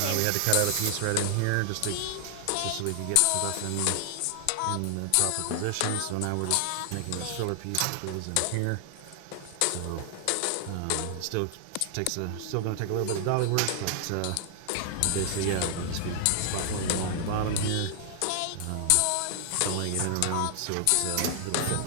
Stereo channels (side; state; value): both; different; correlation 0.00